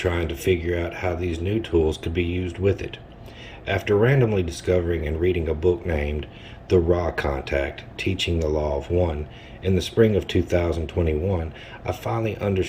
to figure out how these new tools could be used with it. After randomly discovering and reading a book named The Raw Contact, Teaching the Law of One, in the spring of 2021, I finally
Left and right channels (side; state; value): both; identical; correlation 1.00